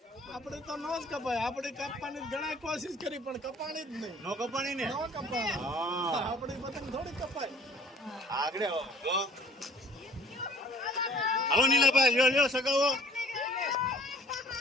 આપણે તો ન જ કપાય. આપણે કાપવાની ઘણા કોશિશ કરી પણ કપાણી જ નહીં. નો કપાણી ને? ન કપાય. હા, આપણી પતંગ થોડી કપાય. આગળ આવો. હાલો નીલાભાઈ, લ્યો લ્યો સગાવો.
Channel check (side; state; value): both; normal; correlation 0.53